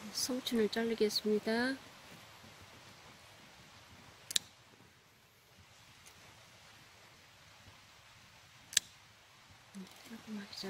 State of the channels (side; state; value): both; identical; correlation 1.00